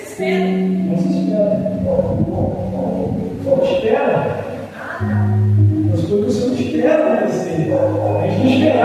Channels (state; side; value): identical; both; correlation 1.00